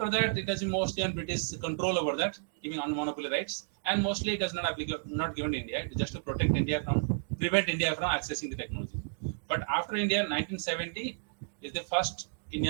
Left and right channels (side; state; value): left; silent; digital silence